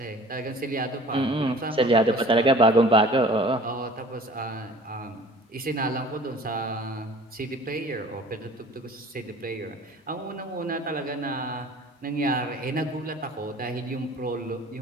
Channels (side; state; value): both; normal; correlation 0.47